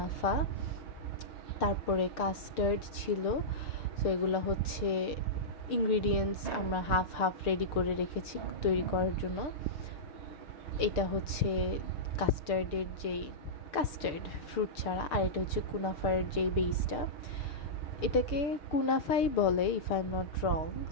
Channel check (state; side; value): late; right; 6.8 ms